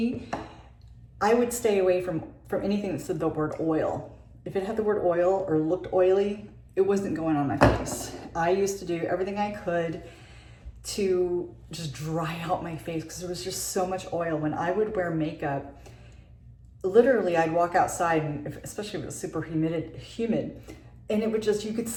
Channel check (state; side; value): identical; both; correlation 1.00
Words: I would stay away from anything that said the word oil. If it had the word oil or looked oily, it wasn't going on my face. I used to do everything I could to just dry out my face because there was just so much oil. When I would wear makeup, literally I'd walk outside, and especially if it was super humid, and it would just, you could